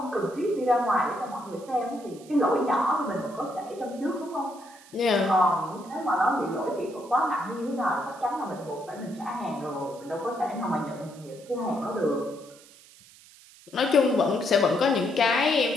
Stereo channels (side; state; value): right; noise; hiss, 23 dB below the sound